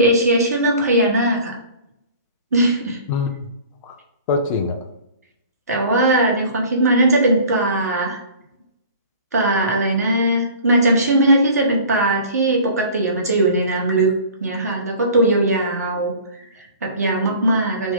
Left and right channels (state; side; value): inverted; both; correlation -0.45